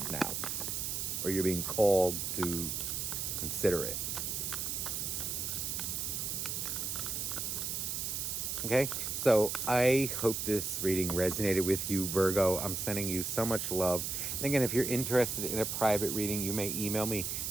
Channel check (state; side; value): noise; right; hiss, 2 dB below the sound